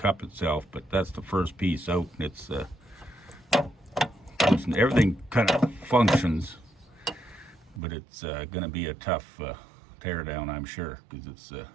itself, but that's the first piece out. It's everything kind of functions, but it's gonna be a tough tear down, I'm sure, because it's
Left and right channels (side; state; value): left; drops out; at 7.8 s